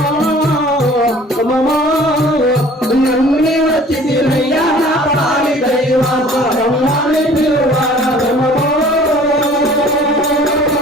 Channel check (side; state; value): both; normal; correlation 0.50